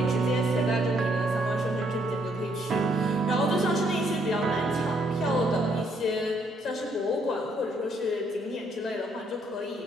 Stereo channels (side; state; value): both; normal; correlation 0.70